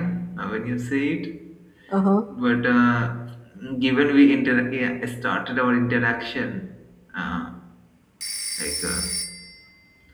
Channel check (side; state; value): both; identical; correlation 1.00